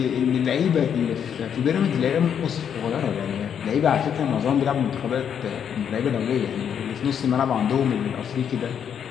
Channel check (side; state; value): right; quieter; 8.3 dB